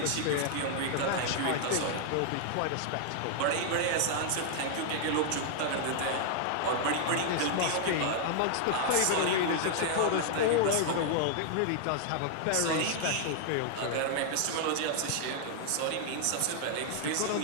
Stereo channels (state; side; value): different; both; correlation -0.01